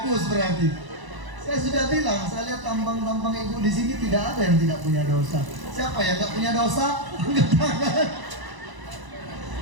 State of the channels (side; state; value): left; late; 1.0 ms